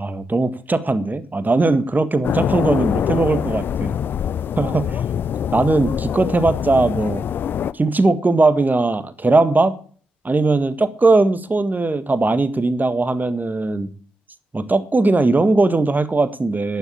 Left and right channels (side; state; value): both; normal; correlation 0.87